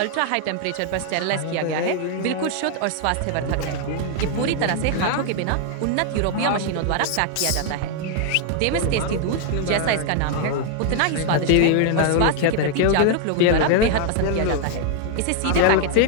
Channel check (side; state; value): both; different; correlation 0.00